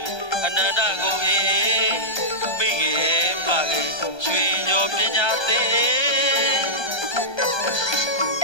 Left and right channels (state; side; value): late; right; 1.3 ms